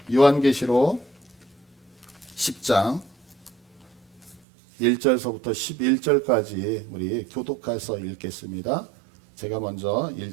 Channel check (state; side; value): drops out; left; at 4.4 s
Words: 요한계시록 10장 1절서부터 11절까지 우리 교독해서 읽겠습니다. 제가 먼저